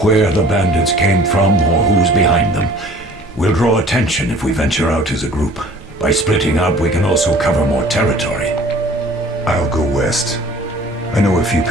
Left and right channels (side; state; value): both; normal; correlation 0.50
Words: where the bandits came from or who's behind them. We'll draw attention if we venture out as a group. By splitting up, we can also cover more territory. I'll go west. I know a few